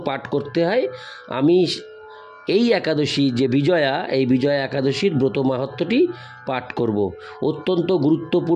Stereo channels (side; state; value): both; identical; correlation 1.00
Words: পাঠ করতে হয়, আমি এই একাদশী যে বিজয়া, এই বিজয়া একাদশীর ব্রত মাহাত্ম্যটি পাঠ করব। অত্যন্ত